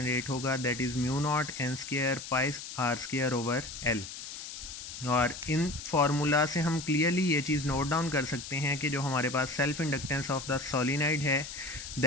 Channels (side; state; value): left; noise; hiss, 10 dB below the sound